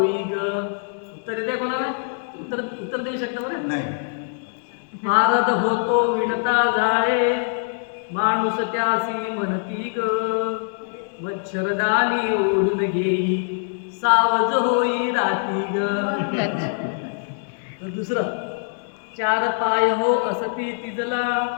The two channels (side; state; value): right; silent; 60 dB below the other